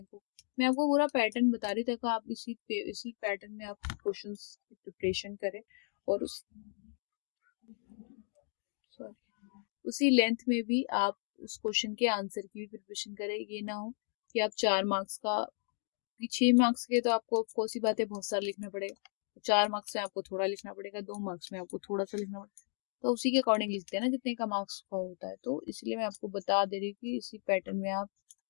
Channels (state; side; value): silent; right; 55 dB below the other